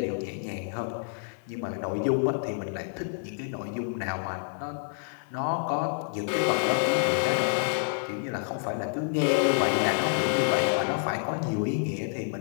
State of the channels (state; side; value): silent; right; 59 dB below the other